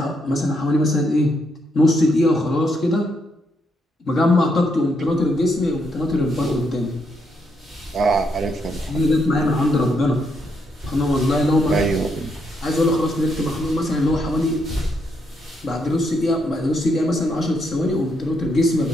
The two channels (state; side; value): normal; both; correlation 0.77